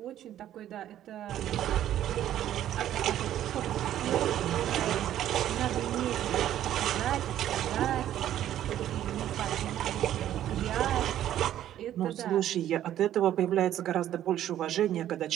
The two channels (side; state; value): left; quieter; 11.8 dB